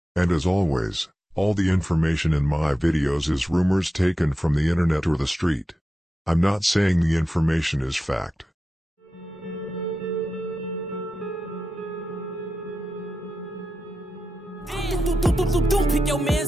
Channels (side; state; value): both; normal; correlation 0.91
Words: And as always, all the information in my videos is rumors taken from the internet or the street. I'm not saying the information is fact. Pick your